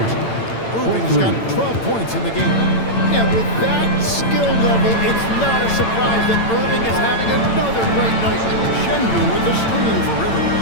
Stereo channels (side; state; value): right; late; 8.9 ms